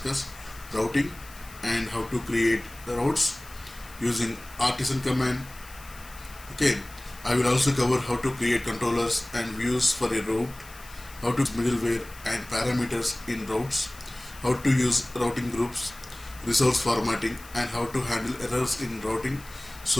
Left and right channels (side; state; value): left; noise; hiss, 20 dB below the sound